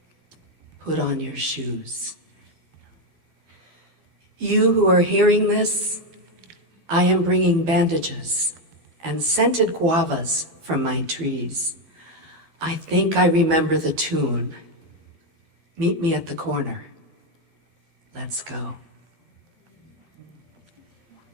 put on your shoes. You who are hearing this, I am bringing bandages and scented guavas from my trees. I think I remember the tune. Meet me at the corner. Let's go.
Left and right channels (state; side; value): late; left; 12 ms